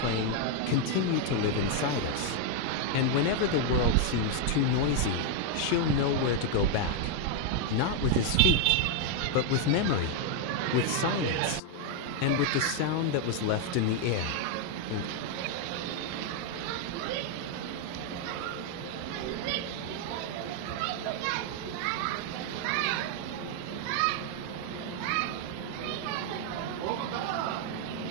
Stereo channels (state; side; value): different; both; correlation 0.00